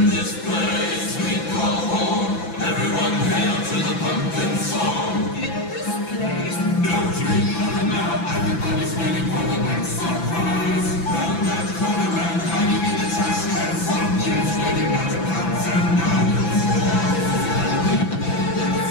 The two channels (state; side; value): late; right; 6.0 ms